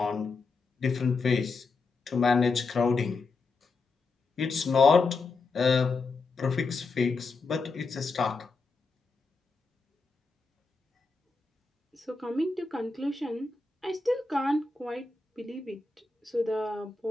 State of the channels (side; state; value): right; quieter; 4.0 dB